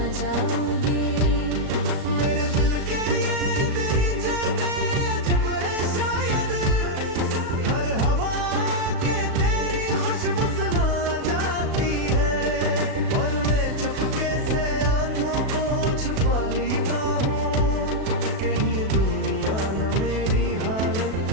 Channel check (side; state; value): left; late; 37 ms